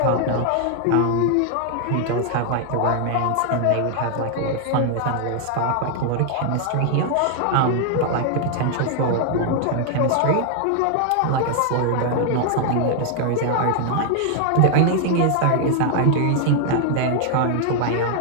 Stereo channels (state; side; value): different; both; correlation 0.00